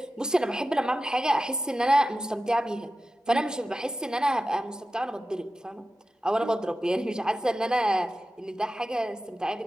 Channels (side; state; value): both; normal; correlation 0.93